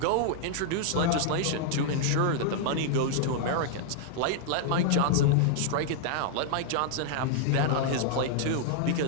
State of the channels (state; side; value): different; both; correlation -0.01